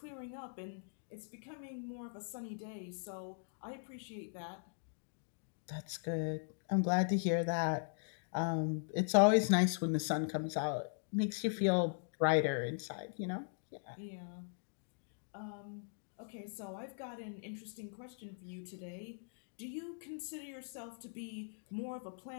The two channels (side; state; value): right; silent; digital silence